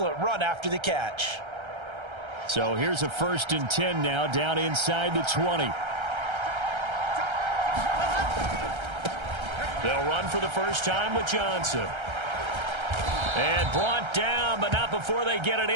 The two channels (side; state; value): left; late; 1.3 ms